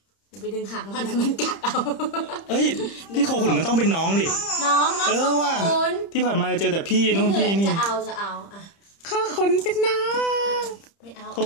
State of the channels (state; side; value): late; right; 30 ms